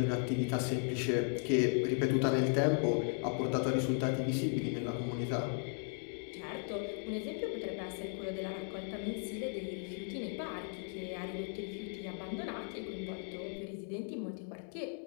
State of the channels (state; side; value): silent; right; 53 dB below the other